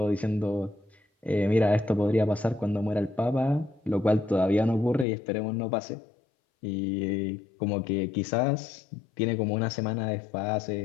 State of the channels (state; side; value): drops out; right; at 5.1 s